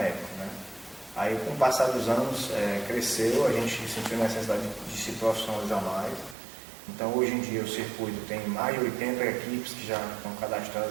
né? Aí com o passar dos anos cresceu, a gente sentiu a necessidade de se profissionalizar mais. Então hoje em dia o circuito tem mais de 80 equipes que já estão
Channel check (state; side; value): drops out; left; at 6.4 s